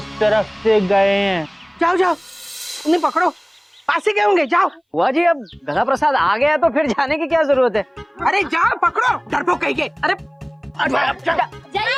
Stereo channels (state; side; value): identical; both; correlation 1.00